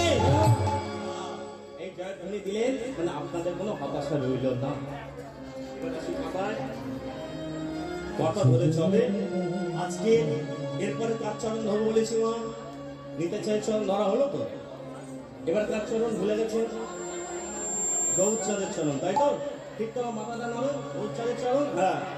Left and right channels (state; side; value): identical; both; correlation 1.00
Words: এই জয়ধ্বনি দিলেন মানে আপনাদের কোনো হতাশা রইল না। কথা ধরে চলে। আজকে এরপরে কার চরণ ধরবো বলেছি? মা নিতে চাই চরণ ধরা হলো তো, এবার কার চরণ ভুলে গেছে? গৌরচাঁদের চরণ, তাই তো? ঠিক তো, মাথাটা নামো, গৌরচাঁদের চরণ। হ্যাঁ,